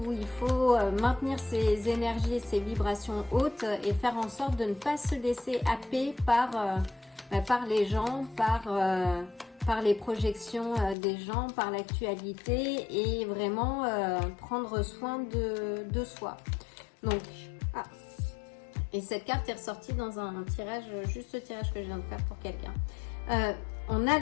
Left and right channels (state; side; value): drops out; right; at 11.0 s